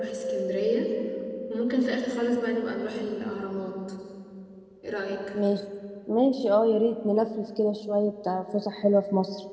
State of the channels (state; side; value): identical; both; correlation 1.00